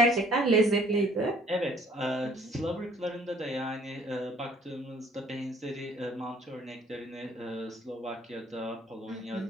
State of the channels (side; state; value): both; normal; correlation 0.57